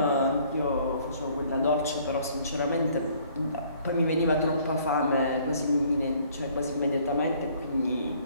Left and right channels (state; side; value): inverted; both; correlation -0.59